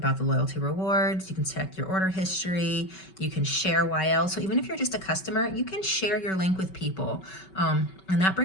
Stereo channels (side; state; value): right; late; 5.3 ms